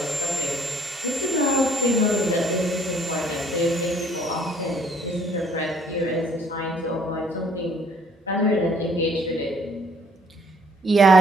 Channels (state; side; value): normal; both; correlation 0.61